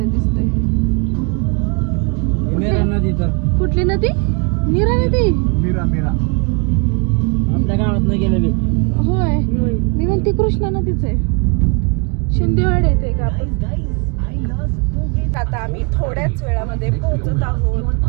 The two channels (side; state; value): left; quieter; 33.4 dB